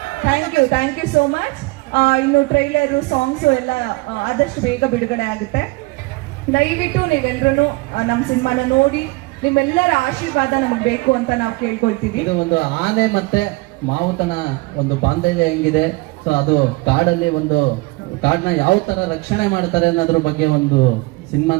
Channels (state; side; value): quieter; left; 24.2 dB